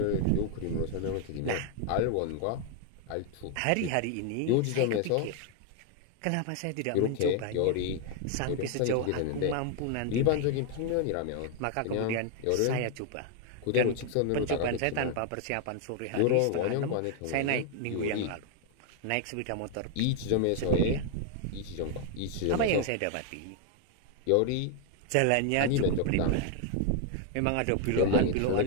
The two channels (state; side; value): different; both; correlation 0.00